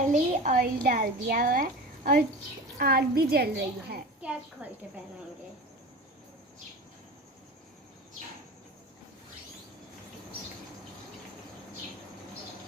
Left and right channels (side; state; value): both; normal; correlation 0.33